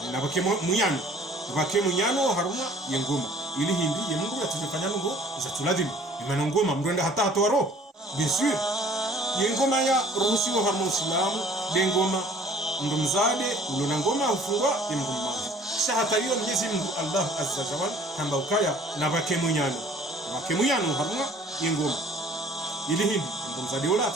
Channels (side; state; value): both; normal; correlation 0.53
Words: na bake munyano haruma yengoma ili hindi ye mndu atufanya ngo za tuladhimu imana ngoma mndu hata hatoro bisir yengoma ya ruhusiwa haruma Uislamu dengoma mndu mzade ulona ngoma ufungwa ya mndu mmoja sha hata hiyo Mwenyezi Mungu Allah azza wa jalla kamba ukaya na bake munyano wakemuyano harunga ingoma ili hindi ndo mzadi ola